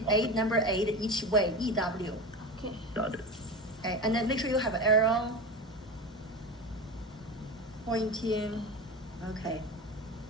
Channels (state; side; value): normal; both; correlation 0.26